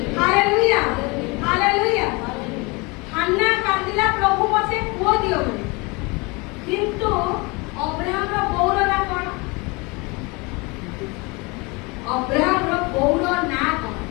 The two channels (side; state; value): right; quieter; 27.1 dB